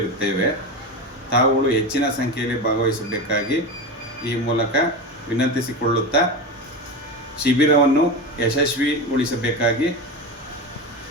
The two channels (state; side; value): normal; both; correlation 0.22